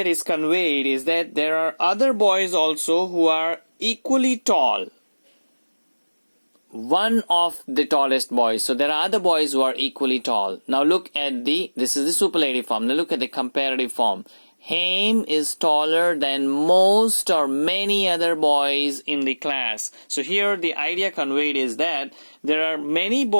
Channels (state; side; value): inverted; both; correlation -1.00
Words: is conveyed is that there are other boys also who are equally tall. one of the tallest boys. So there are other boys who are equally tall. Now look at this is the superlative form. Now look at the comparative form. Haim is taller than most or many other boys in the class. So here the idea conveyed is that there are many